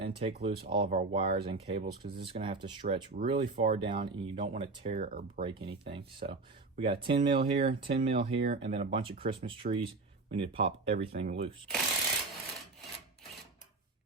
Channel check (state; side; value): quieter; left; 3.6 dB